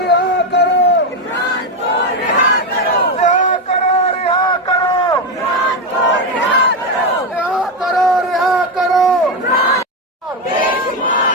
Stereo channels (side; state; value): both; normal; correlation 0.09